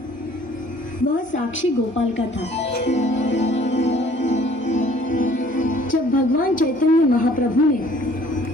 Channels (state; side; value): normal; both; correlation 0.56